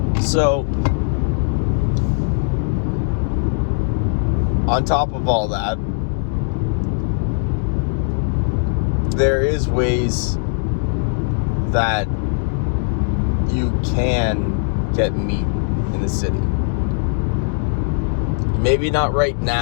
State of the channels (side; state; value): right; silent; 62 dB below the other